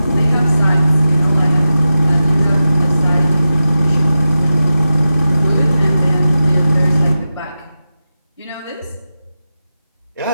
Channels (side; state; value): both; inverted; correlation -0.92